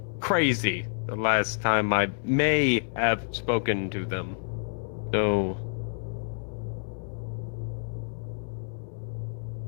crazy the last time I may have spoken to them. So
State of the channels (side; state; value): right; silent; digital silence